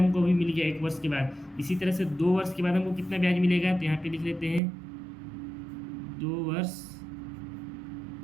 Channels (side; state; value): left; drops out; at 4.6 s